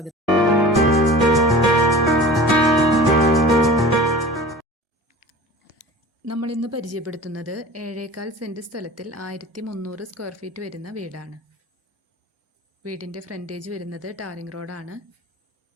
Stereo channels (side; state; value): both; normal; correlation 0.38